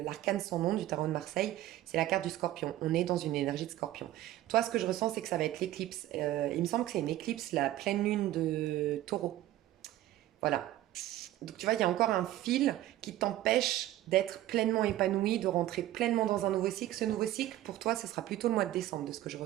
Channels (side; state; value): left; quieter; 14.6 dB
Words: l'arcane sans nom du tarot de Marseille, c'est la carte du scorpion. On est dans une énergie de scorpion. Toi, ce que je ressens, c'est que ça va être l'éclipse. Il me semble que c'est une éclipse, la pleine lune de taureau. Voilà. Donc tu vois, il y a encore un fil qui t'empêche d'être pleinement épanoui, de rentrer pleinement dans un nouveau cycle. Ce nouveau cycle, pour toi, ce sera plutôt le mois de décembre, de ce que je